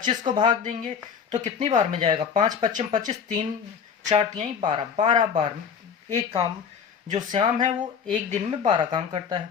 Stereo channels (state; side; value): quieter; right; 6.9 dB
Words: को भाग देंगे तो कितनी बार में जाएगा? 5 25 25, 3 4 3 12, 12 बार एक काम जो श्याम है वो एक दिन में 12 काम करता